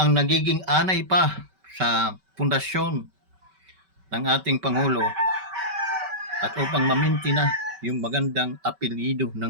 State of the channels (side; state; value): left; late; 5.2 ms